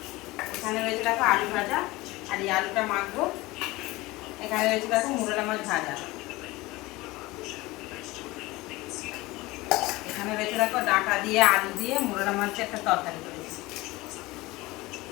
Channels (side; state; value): right; quieter; 20.7 dB